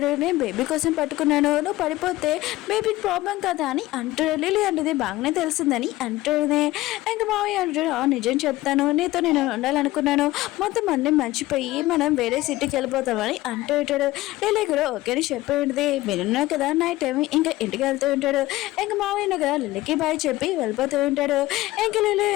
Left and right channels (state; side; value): quieter; right; 17.7 dB